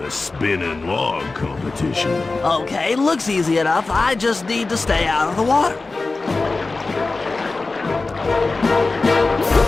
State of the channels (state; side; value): quieter; right; 3.6 dB